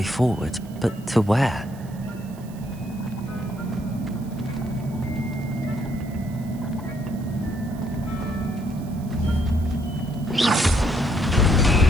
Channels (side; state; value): right; noise; hiss, 24 dB below the sound